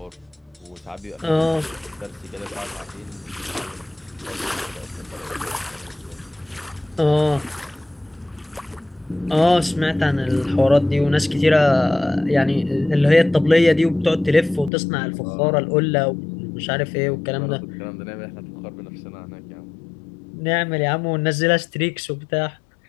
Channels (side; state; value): right; drops out; at 14.7 s